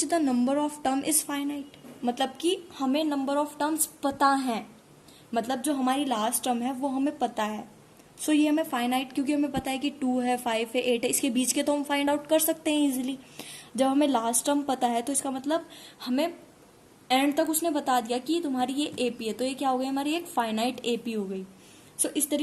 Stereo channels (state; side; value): identical; both; correlation 1.00